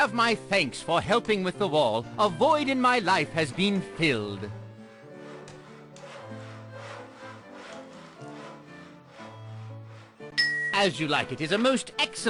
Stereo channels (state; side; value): identical; both; correlation 1.00